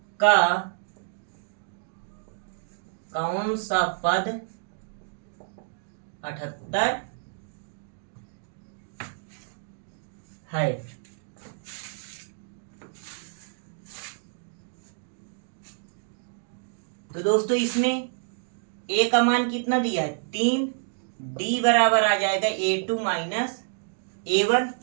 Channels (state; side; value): silent; left; digital silence